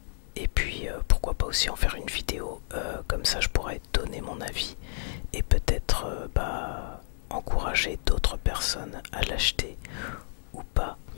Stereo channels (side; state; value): right; silent; digital silence